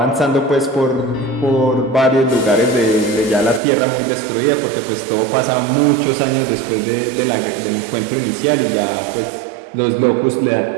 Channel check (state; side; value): drops out; left; at 3.6 s